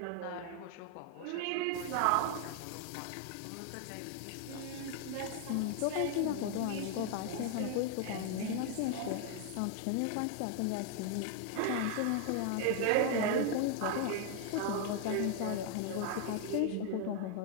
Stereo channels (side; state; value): both; different; correlation 0.00